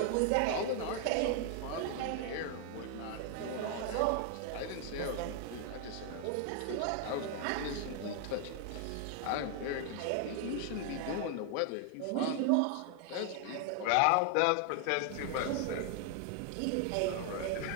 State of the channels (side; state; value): both; different; correlation 0.00